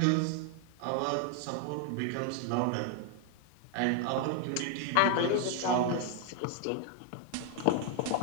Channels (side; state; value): both; different; correlation 0.00